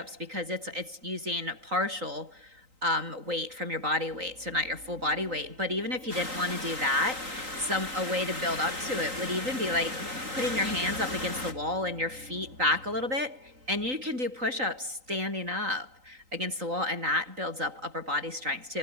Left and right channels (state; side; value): late; left; 3.9 ms